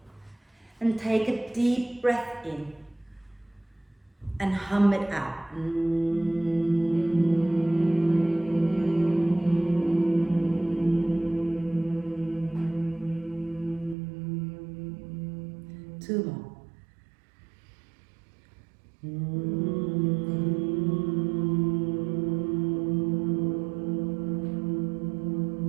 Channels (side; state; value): left; drops out; at 14.0 s